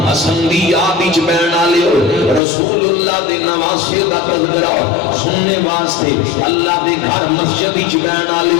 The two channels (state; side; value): drops out; right; at 2.4 s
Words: حسن دی یاد وچ بہن والے رسول اللہ دے نواسے دا تذکرہ سننے واسطے اللہ دے گھر مسجد وچ بہن